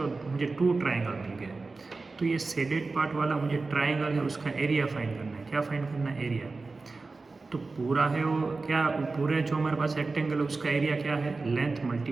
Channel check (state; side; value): quieter; left; 3.8 dB